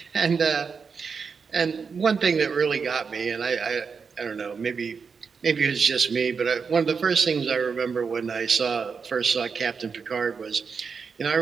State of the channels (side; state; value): left; quieter; 5.6 dB